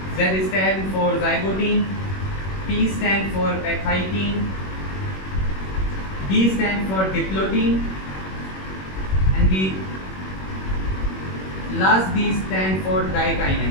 Z stands for zygotin, P stands for pachytin, D stands for diplotin, and the last D stands for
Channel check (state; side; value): late; right; 21 ms